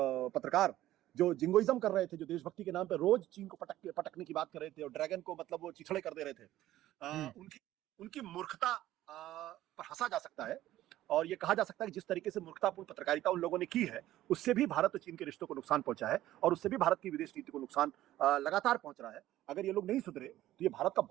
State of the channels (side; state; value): left; quieter; 14.4 dB